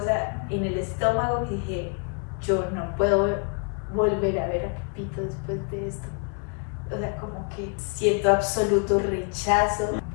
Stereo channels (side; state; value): right; quieter; 39.5 dB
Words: en el estómago que dije, yo no puedo volver a ver a Pepito después de esto. O sea, como que siento absoluto rechazo